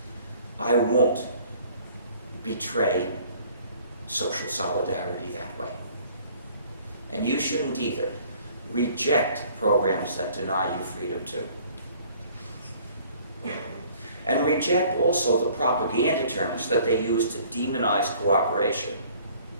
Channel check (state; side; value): inverted; both; correlation -0.55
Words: I won't betray social solidarity that way. And you shouldn't either. Reject programs that deny you freedom too. And reject also the propaganda terms that they use to demonize cooperation.